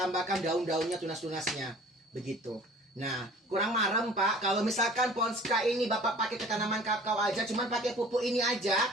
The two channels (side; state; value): both; normal; correlation 0.48